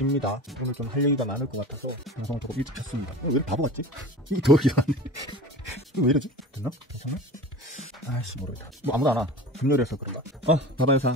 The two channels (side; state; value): both; normal; correlation 0.35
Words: 오늘 좀 할 얘기가 많을 것 같아서 방송을 조금 일찍 켰습니다. 왜 이렇게 바보 같지? 이게 더 이상하네. 이거 왜 이러지? 됐나? 괜찮나? 아이씨 모르겠다. 뭐 아무도 안 와. 금요일에서 그런가? 바바회사